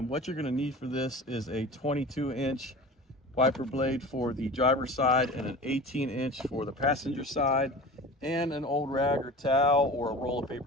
what you're going to need for this is a 22-inch wiper blade for the driver's side and an 18-inch for the passenger side, and an old rag or towel or a roll of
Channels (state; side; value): normal; both; correlation 0.36